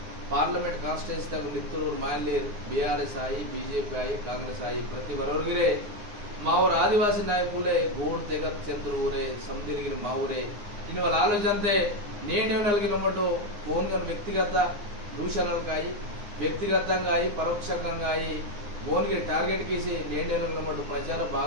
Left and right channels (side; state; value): left; late; 9.6 ms